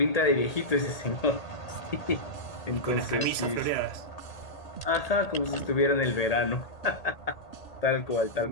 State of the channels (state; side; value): late; right; 1.8 ms